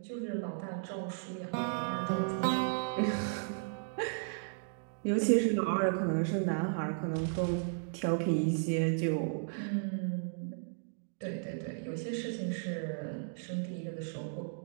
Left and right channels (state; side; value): silent; left; digital silence